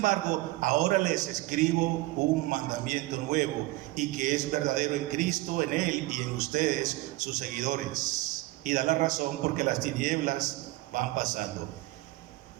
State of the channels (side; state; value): left; quieter; 19.7 dB